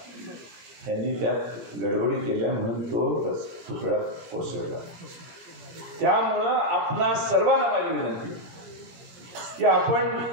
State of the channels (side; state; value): left; late; 17 ms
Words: त्यांनी त्यात गडबडी केल्या म्हणून तो पुतळा कोसळला. त्यामुळं आपणा सर्वांना माझी विनंती की आपण